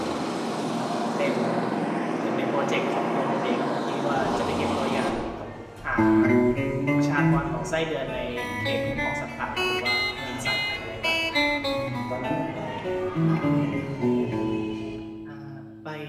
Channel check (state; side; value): identical; both; correlation 1.00